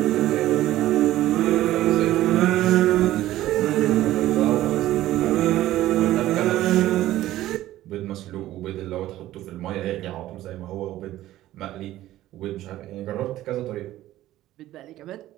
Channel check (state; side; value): quieter; left; 14.7 dB